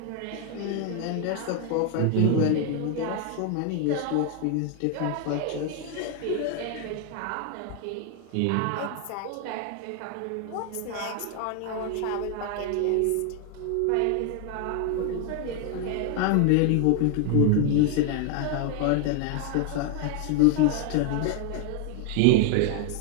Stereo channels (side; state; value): both; different; correlation 0.01